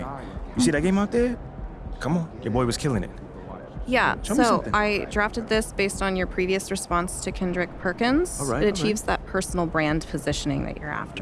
You see that game out there? Come on, your boy was killing it. Yeah, Show me so something. I drafted this based on your previous response to Kendrick Perkins. All right, it all achieves that personal brand positioning that you're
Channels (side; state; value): both; identical; correlation 1.00